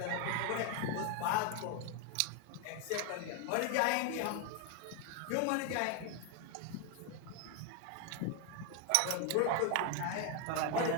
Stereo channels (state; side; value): different; both; correlation 0.01